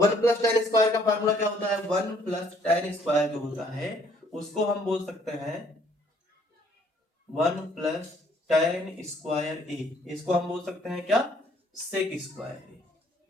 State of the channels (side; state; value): both; normal; correlation 0.63